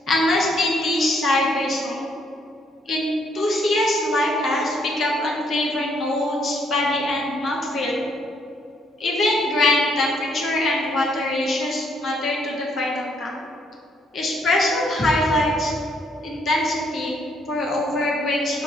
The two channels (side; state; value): both; normal; correlation 0.70